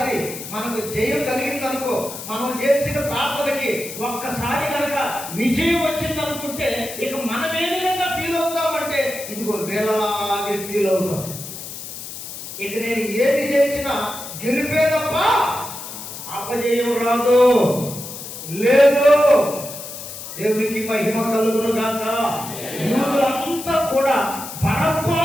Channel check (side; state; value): left; noise; hiss, 10 dB below the sound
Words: మనకు జయం కలిగిందనుకో, మనం చేసిన ప్రార్థనకి ఒక్కసారి కనుక విజయం వచ్చిందనుకుంటే ఇక మనం ఏ విధంగా ఫీల్ అవుతామంటే ఇదిగో వీళ్ళలాగే ఫీల్ అవుతాం. ఇక నేను ఏది చేసినా గెలిపే తప్ప అపజయం రాదు. లేదు. దేవునికి మహిమ కలుగును గాక. యూదులంతా కూడా